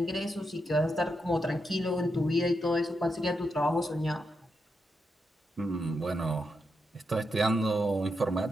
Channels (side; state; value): both; normal; correlation 0.84